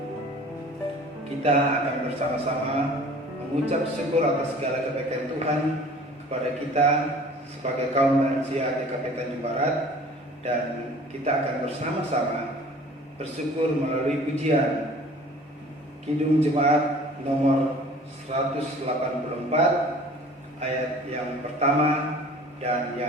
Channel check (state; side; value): normal; both; correlation 0.48